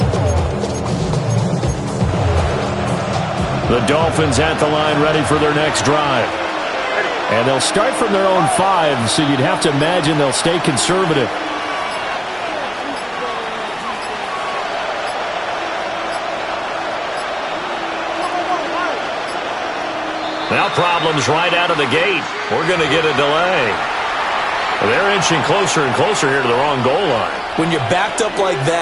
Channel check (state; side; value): identical; both; correlation 1.00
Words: The Dolphins at the line ready for their next drive. And they'll start from their own 5, so you'd have to imagine they'll stay conservative. Now problems right out of the gate. We're going to get a delay. They're inching closer and closer here to the wrong goal line. When you're backed up like